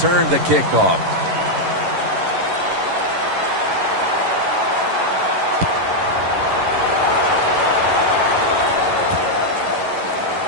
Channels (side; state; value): left; late; 11 ms